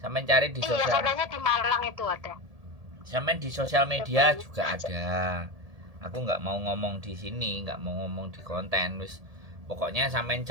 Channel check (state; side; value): late; left; 1.7 ms